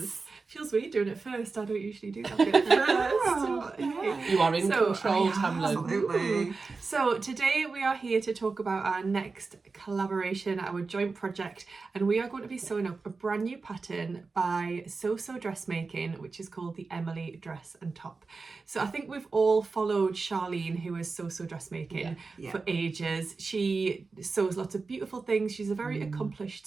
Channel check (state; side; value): quieter; left; 4.2 dB